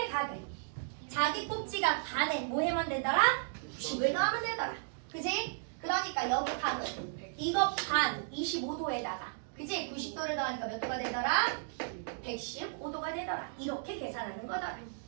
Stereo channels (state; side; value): silent; left; digital silence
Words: 각은 자기 꼭지가 반에 뭐 하면 되더라? 90을 더하면 되더라. 그지? 그러니까 여기 각은 이거 반 25도에다가 그지? 90도를 더하니까 몇 도가 되더라? 115도가 되더라. 이렇게 계산하는 거더라.